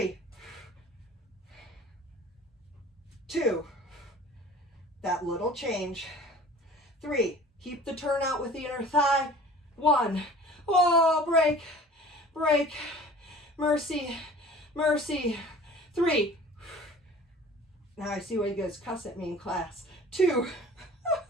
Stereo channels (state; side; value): normal; both; correlation 0.45